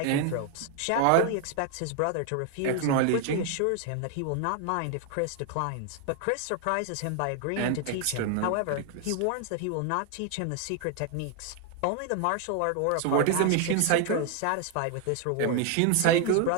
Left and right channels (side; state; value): both; different; correlation 0.00